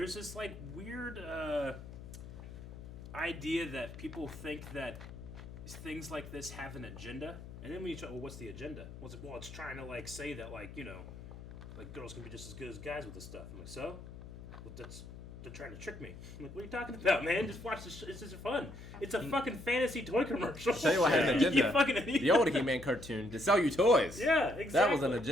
this like weird idea that people think that things like this have an agenda, and then when you try, well, what's the agenda? Well, it's trying to like say that like like girls can be just as good as guys with this stuff. I'm like, so? Well, they're trying to trick me. I'm like, what are you talking about, man? Just watch this. It's just fun. It's a fucking fantasy toy commercial. I'll tell you what had an You agenda. fucking The old He-Man cartoon to sell you toys. Yeah, exactly. That was an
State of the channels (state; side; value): noise; left; hum, 13 dB below the sound